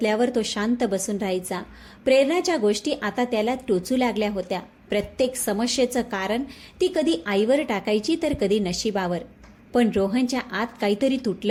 तो शांत बसून राहायचा. प्रेरणाच्या गोष्टी आता त्याला टोचू लागल्या होत्या. प्रत्येक समस्येचं कारण ती कधी आईवर टाकायची तर कधी नशिबावर. पण रोहनच्या आत काहीतरी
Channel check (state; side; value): identical; both; correlation 1.00